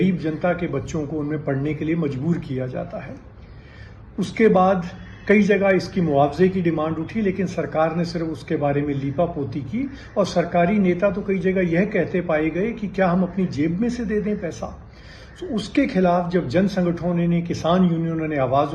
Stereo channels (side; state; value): both; identical; correlation 1.00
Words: जनता के बच्चों को उनमें पढ़ने के लिए मजबूर किया जाता है। उसके बाद कई जगह इसकी मुआवजे की डिमांड उठी, लेकिन सरकार ने सिर्फ उसके बारे में लीपापोती की और सरकारी नेता तो कई जगह यह कहते पाए गए कि क्या हम अपनी जेब में से दे दें पैसा। तो उसके खिलाफ जब जन संगठनों ने, किसान यूनियनों ने आवाज